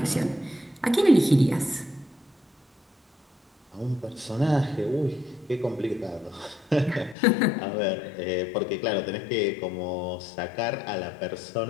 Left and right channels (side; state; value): right; drops out; at 7.2 s